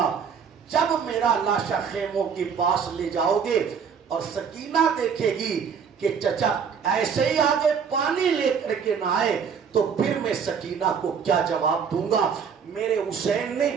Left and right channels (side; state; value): left; quieter; 6.7 dB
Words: جب میرا لاشا خیموں کے پاس لے جاؤ گے اور سکینہ دیکھے گی کہ چچا ایسے ہی آگے پانی لے کر کے نہ آئے تو پھر میں سکینہ کو کیا جواب دوں گا۔ میرے حسین نے